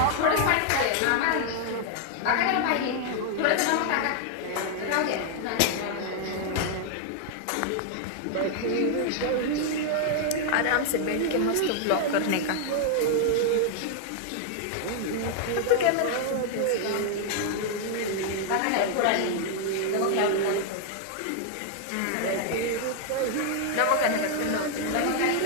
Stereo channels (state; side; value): different; both; correlation 0.00